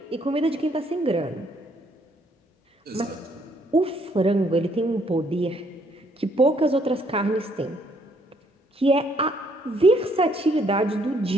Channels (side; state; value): both; normal; correlation 0.68